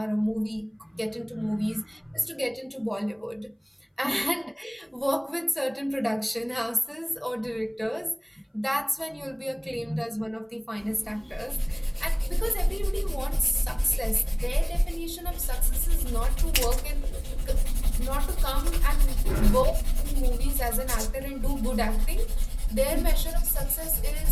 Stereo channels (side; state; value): both; identical; correlation 1.00